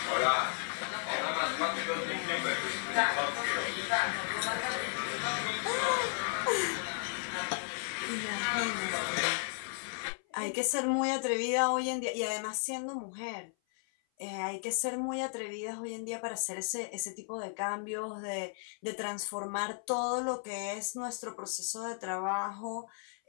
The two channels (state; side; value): silent; right; 55 dB below the other